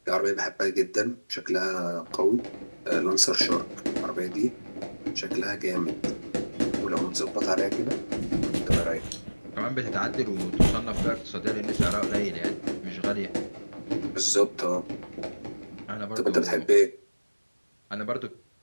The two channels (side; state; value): both; inverted; correlation -1.00